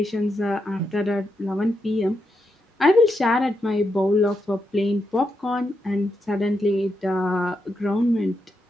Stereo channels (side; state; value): both; normal; correlation 0.84